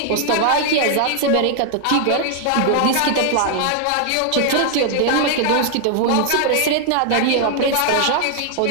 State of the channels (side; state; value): both; different; correlation 0.00